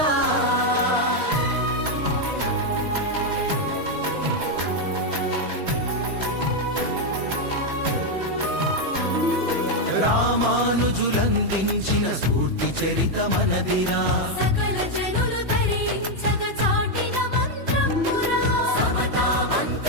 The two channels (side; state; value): left; late; 3.0 ms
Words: రామానుజులందించిన స్ఫూర్తి చరిత మనదిరా సకల జనులు ధరించగ చాటిన మంత్రమురా సమతా